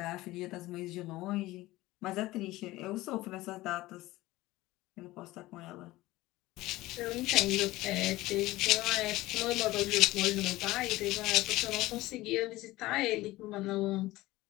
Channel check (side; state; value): right; quieter; 18.2 dB